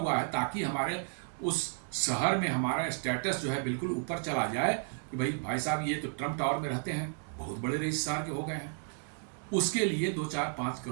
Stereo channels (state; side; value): silent; left; 56 dB below the other